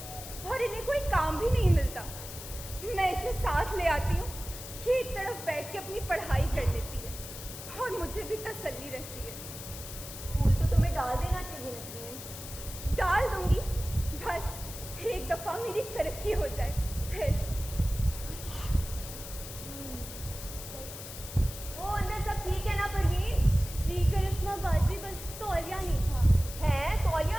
और इन्हें कोई काम भी नहीं मिलता। मैं इसे साथ ले आती हूँ, ये एक तरफ बैठ के अपनी पढ़ाई कर लेती है और मुझे भी तसल्ली रहती है। स्कूल तो तुम्हें डाल देना चाहिए नसरीन। डाल दूंगी, बस एक दफ़ा मेरी तरक्की हो जाए फिर। वो अंदर सब ठीक है ना परवीन? जी करिश्मा बाजी, बस तौलिया नहीं था। है? तौलिया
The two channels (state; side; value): noise; left; hiss, 11 dB below the sound